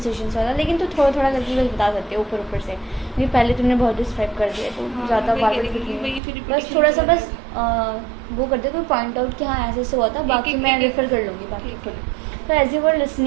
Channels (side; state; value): left; drops out; at 6.2 s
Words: वाला, लेकिन तो थोड़ा थोड़ा करके बस बता सकते हो ऊपर से, क्योंकि पहले तुमने बहुत डिस्क्राइब कर दिया, तो ज़्यादा बस थोड़ा सा बस वो कर दे, कोई पॉइंट आउट कि हाँ ऐसे हुआ था, बाकी मैं रेफर कर लूँगी बाकी खुद। So as you were